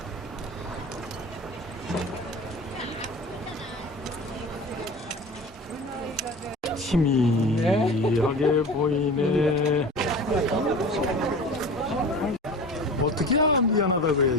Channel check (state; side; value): normal; both; correlation 0.36